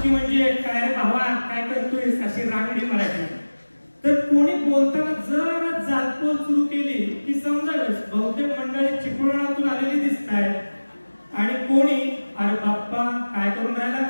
म्हणजे काय रे भावा काय करतोय अशी रांगडी मराठी. तर कोणी बोलताना जरा जालपोल सुरू केली की समजावेच बहुतेक मंडळी चिपळूणातून आलेली दिसत आहे, आणि कोणी अरे बाप्पा काय करून राहिला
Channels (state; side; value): inverted; both; correlation -1.00